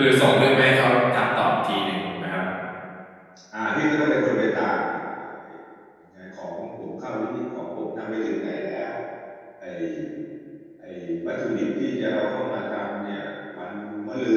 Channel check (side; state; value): both; identical; correlation 1.00